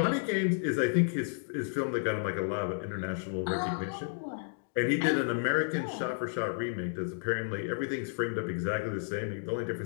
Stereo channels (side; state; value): right; silent; digital silence